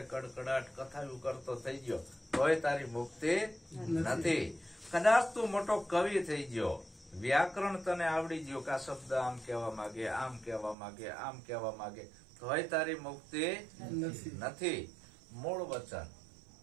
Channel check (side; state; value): left; drops out; at 10.8 s